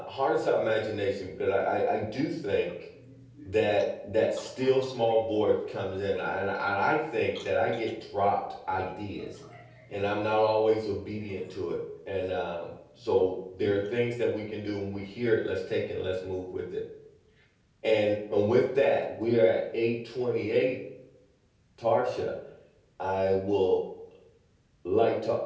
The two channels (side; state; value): both; identical; correlation 1.00